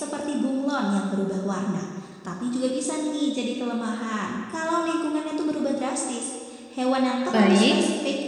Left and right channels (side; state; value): both; identical; correlation 1.00